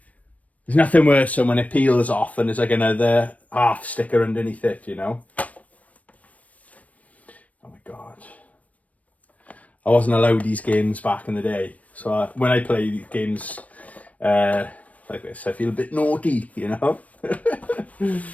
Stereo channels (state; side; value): late; right; 0.069 ms